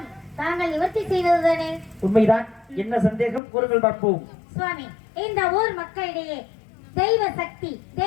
தாங்கள் நிவர்த்தி செய்வதுதானே? உண்மைதான். என்ன சந்தேகம் கூறுங்கள் பார்ப்போம். சுவாமி, இந்த ஊர் மக்களிடையே தெய்வ சக்தி,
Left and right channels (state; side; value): drops out; right; at 3.4 s